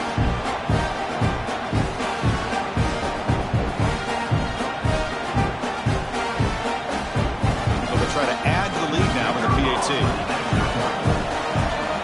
Try to add to the lead now with a PAT.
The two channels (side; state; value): both; identical; correlation 1.00